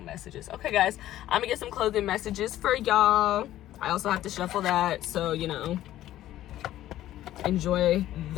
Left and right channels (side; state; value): right; quieter; 13.6 dB